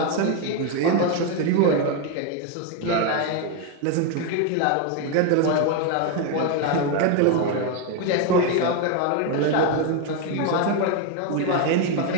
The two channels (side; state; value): both; different; correlation 0.01